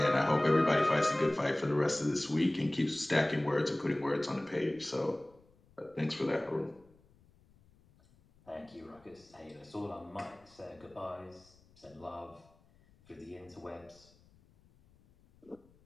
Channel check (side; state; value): left; noise; rumble, 30 dB below the sound